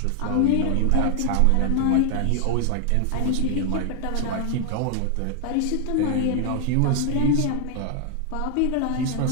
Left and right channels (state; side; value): different; both; correlation 0.00